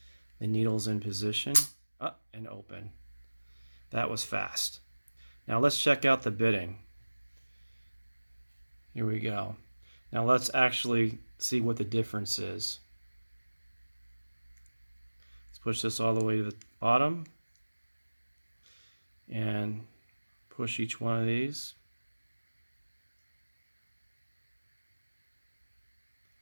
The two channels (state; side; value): inverted; both; correlation -1.00